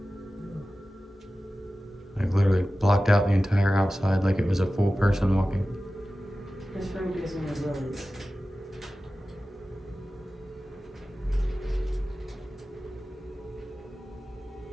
Like literally blocked out the entire outside like it was a full person walking. This room gives me the willies.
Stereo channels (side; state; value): both; normal; correlation 0.95